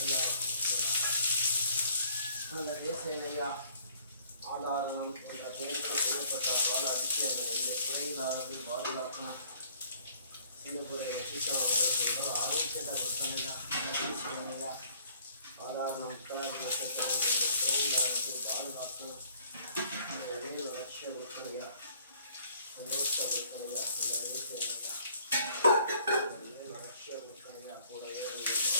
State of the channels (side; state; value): both; inverted; correlation -0.59